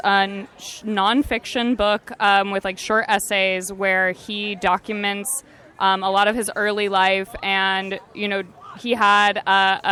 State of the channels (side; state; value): both; identical; correlation 1.00